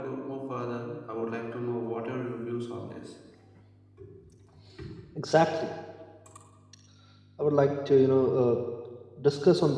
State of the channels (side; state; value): both; identical; correlation 1.00